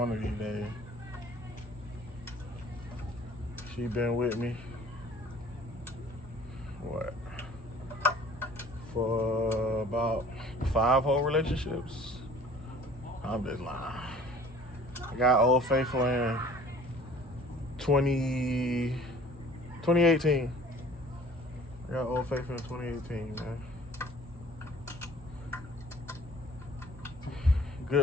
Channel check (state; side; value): normal; both; correlation 0.50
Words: of these days. She been with me, what, for about 5 whole relationships? I'm just lying. I got Old Faithful in 2018. I got Old Faithful in 2018, man.